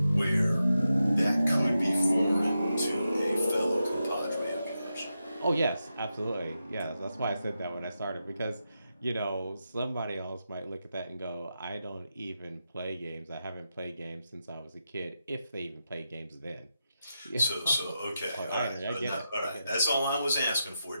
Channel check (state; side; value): inverted; both; correlation -0.88